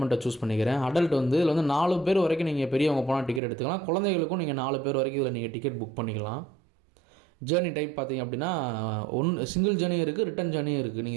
சூஸ் பண்ணிக்கிறேன். அடல்ட் இதில் 4 பேர் வரைக்கும் நீங்கள் பெரியவங்க போனால் டிக்கெட் எடுத்துக்கலாம். குழந்தைகளுக்கும் நீங்கள் 4 பேர் வரைக்கும் இதில் நீங்கள் டிக்கெட் புக் பண்ணிக்கலாம். ஜேர்னி டைப் பார்த்தீங்க அப்படின்னா சிங்கிள் ஜேர்னியும் இருக்குது, ரிட்டன் ஜேர்னியும் இருக்குது.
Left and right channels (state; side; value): drops out; left; at 3.4 s